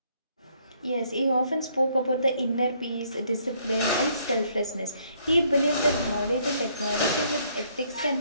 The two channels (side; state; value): both; inverted; correlation -0.67